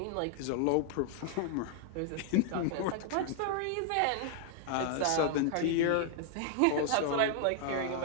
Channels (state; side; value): different; both; correlation 0.00